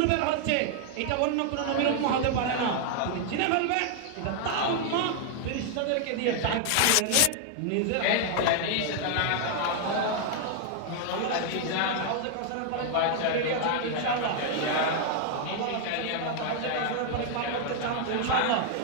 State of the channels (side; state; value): both; different; correlation 0.00